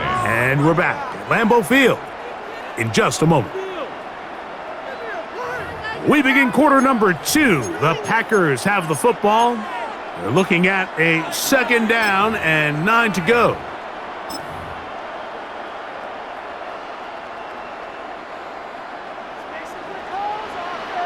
And we're back at Lambeau Field in just a moment. We begin quarter number 2. The Packers have the football. They're looking at a second down and 9 to go.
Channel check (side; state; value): both; identical; correlation 1.00